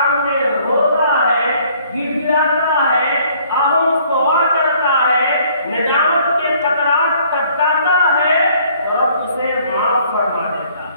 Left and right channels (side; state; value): both; inverted; correlation -0.60